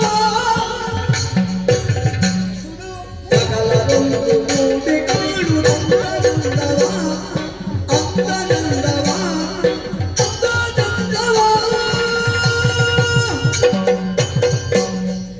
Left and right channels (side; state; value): both; identical; correlation 1.00